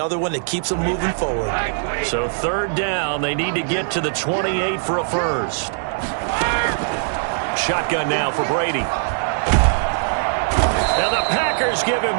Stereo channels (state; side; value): silent; left; digital silence